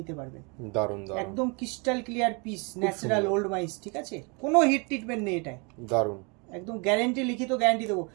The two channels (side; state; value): left; quieter; 32.1 dB